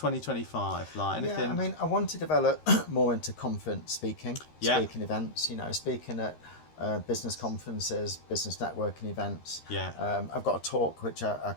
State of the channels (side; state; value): right; late; 13 ms